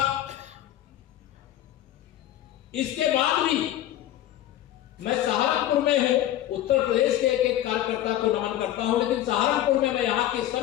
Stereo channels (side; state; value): right; quieter; 13.0 dB